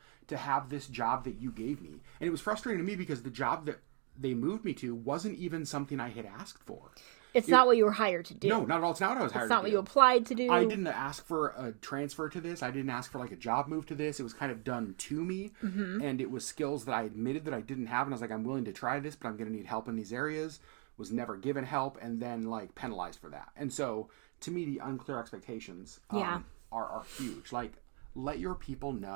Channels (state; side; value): quieter; left; 33.6 dB